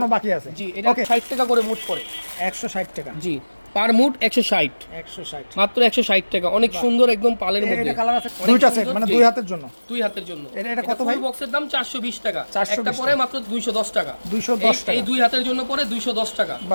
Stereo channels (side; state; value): both; inverted; correlation -1.00